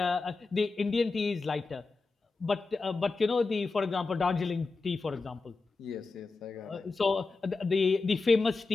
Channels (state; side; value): quieter; right; 3.9 dB